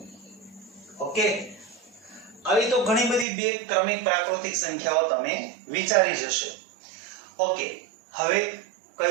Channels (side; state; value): left; drops out; at 3.2 s